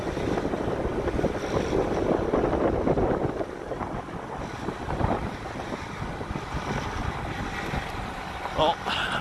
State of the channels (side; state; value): both; identical; correlation 1.00